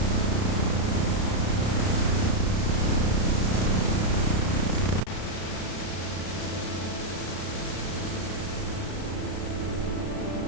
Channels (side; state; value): right; late; 33 ms